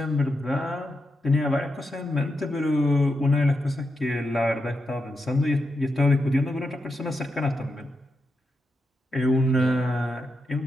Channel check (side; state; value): both; normal; correlation 0.86